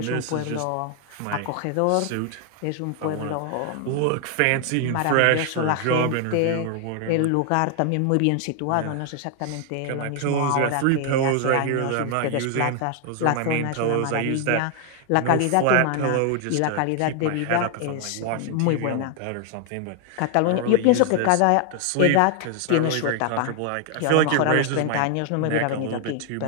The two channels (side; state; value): both; different; correlation 0.00